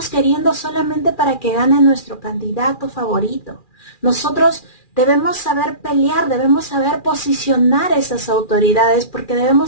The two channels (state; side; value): late; right; 2.4 ms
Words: queriendo solamente para que gane nuestro candidato favorito? Nosotros debemos saber pelear, debemos saber posicionar esas autoridades porque